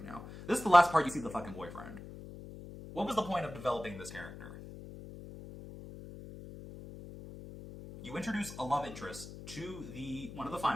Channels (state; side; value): noise; left; hum, 13 dB below the sound